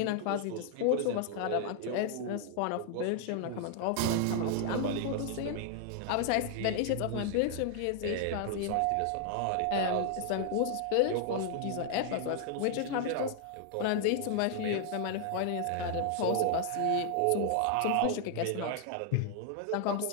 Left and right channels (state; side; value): different; both; correlation 0.00